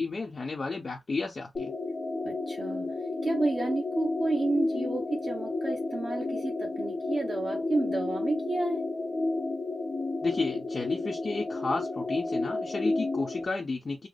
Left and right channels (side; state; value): both; normal; correlation 0.93